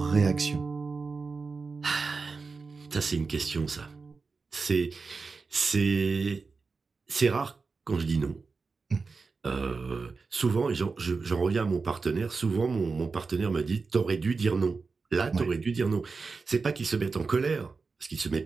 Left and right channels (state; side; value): quieter; left; 4.5 dB